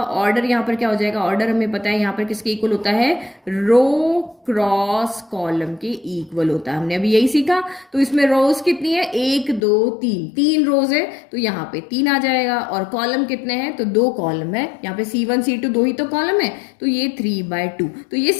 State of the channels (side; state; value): right; drops out; at 9.6 s